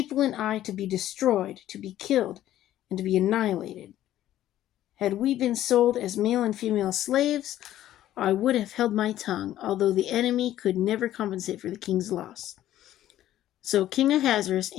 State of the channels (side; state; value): right; quieter; 13.0 dB